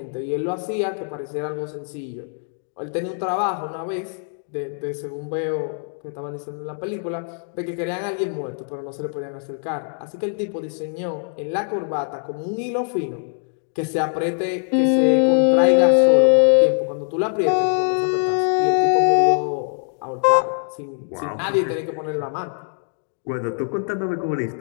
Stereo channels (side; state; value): right; silent; digital silence